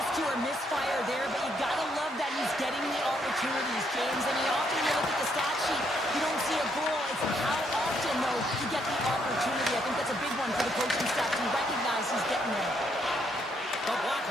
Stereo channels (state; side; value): normal; both; correlation 0.73